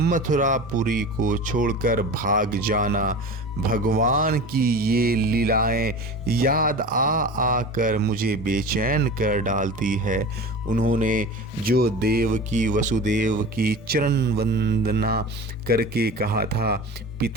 को छोड़कर भाग जाना। भगवान की ये लीलाएं याद आकर मुझे बेचैन कर डालती है। उन्होंने जो देवकी वसुदेव की चरण वंदना करके कहा था,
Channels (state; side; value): normal; both; correlation 0.33